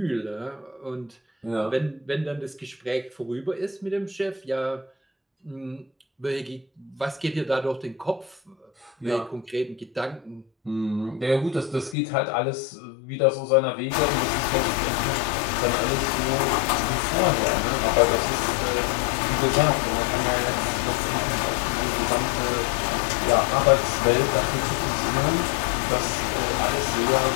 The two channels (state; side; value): drops out; right; at 12.0 s